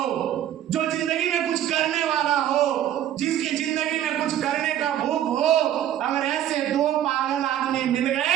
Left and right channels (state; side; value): quieter; left; 11.4 dB